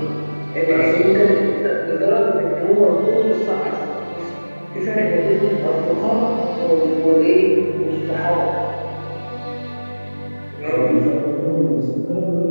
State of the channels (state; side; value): inverted; both; correlation -1.00